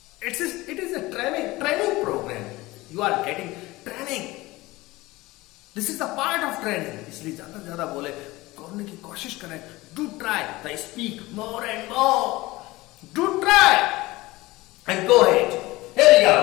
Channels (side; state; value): right; quieter; 20.0 dB